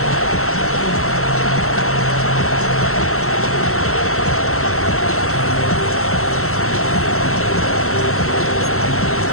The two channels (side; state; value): right; late; 0.63 ms